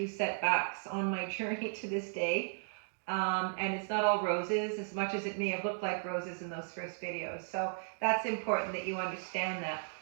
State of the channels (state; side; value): silent; left; digital silence